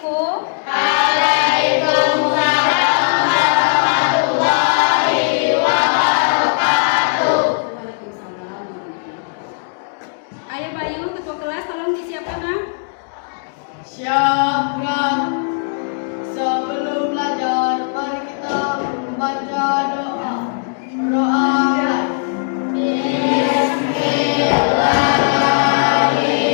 Waalaikumsalam warahmatullahi wabarakatuh. Waalaikumsalam. Ayah Bayu, ketua kelas, tolong disiapkan, Nak. Siapkan. Sebelum belajar, mari kita membaca doa. Doa.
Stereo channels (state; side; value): silent; right; digital silence